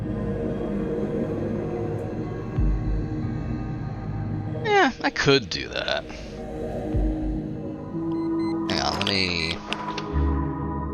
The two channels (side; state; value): both; identical; correlation 1.00